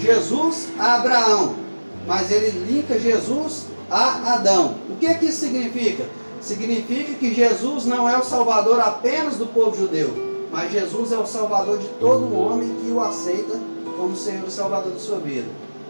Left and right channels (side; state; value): both; inverted; correlation -1.00